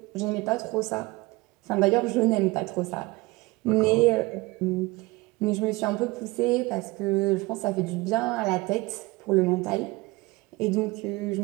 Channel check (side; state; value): left; quieter; 22.6 dB